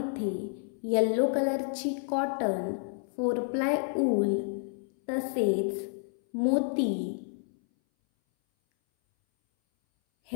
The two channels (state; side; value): silent; right; 58 dB below the other